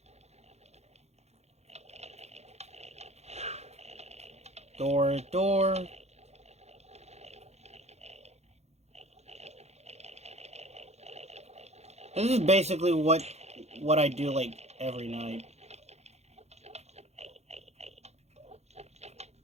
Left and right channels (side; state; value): left; late; 0.31 ms